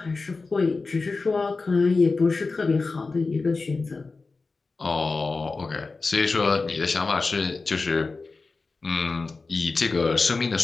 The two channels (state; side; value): quieter; right; 3.9 dB